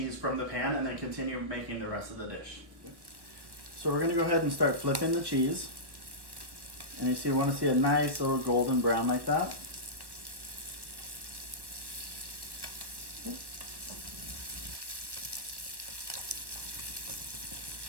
from the pan and then continue making the rest of the dish. So we're going to go ahead and start flipping the cheese. And you see, we want to see a nice little golden brown like that.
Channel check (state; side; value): late; left; 1.1 ms